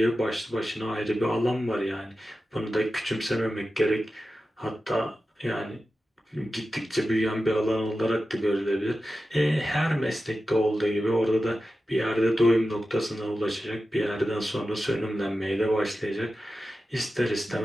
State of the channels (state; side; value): normal; both; correlation 0.93